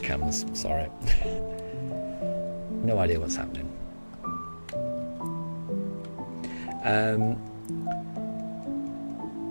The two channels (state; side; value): inverted; both; correlation -1.00